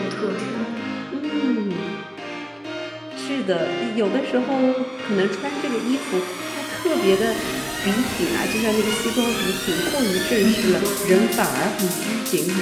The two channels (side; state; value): both; identical; correlation 1.00